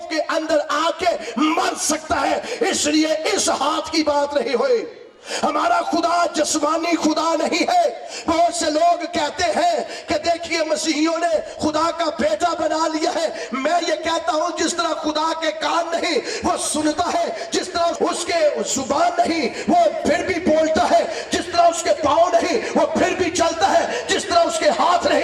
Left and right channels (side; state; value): both; identical; correlation 1.00